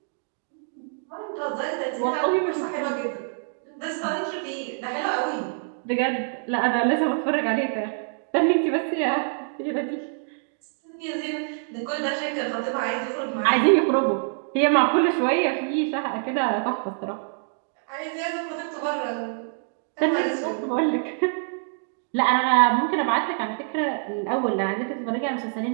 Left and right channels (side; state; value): left; silent; digital silence